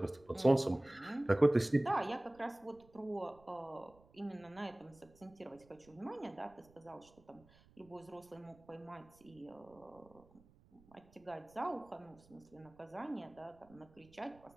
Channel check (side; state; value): right; noise; rumble, 27 dB below the sound